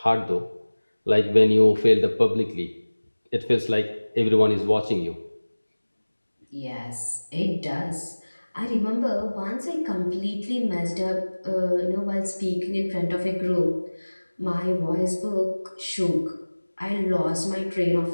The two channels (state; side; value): inverted; both; correlation -1.00